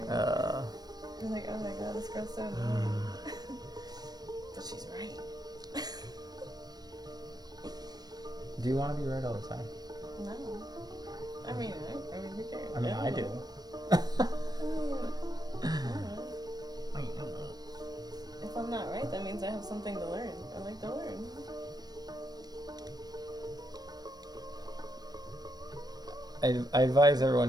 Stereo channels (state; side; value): late; left; 0.19 ms